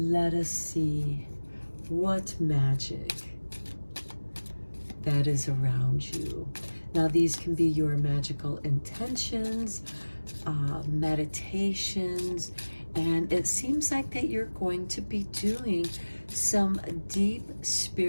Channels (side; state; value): both; inverted; correlation -1.00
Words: us see what magic that is around you. Now, these can be your magical intentions, meditations, and it seems like that you're going to be doing some deep